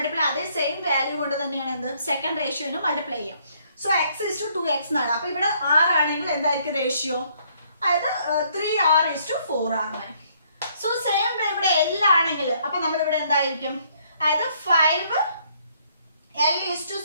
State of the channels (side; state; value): both; inverted; correlation -0.66